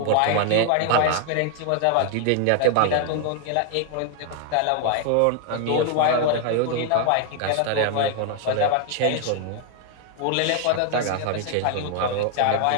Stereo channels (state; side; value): different; both; correlation 0.00